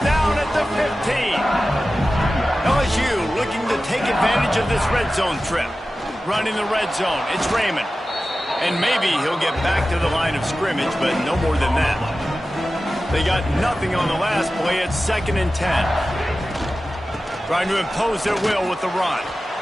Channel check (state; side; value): normal; both; correlation 0.95